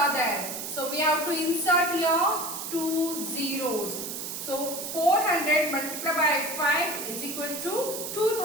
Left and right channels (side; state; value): right; noise; hiss, 6 dB below the sound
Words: there. So we have to insert here 2 zeros. So 400 multiplied by 5 is equal to